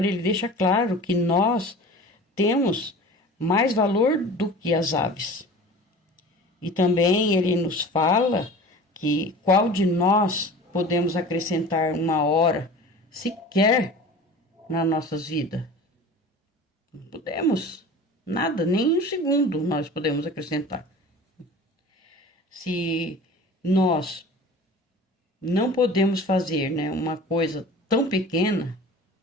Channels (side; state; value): both; normal; correlation 0.39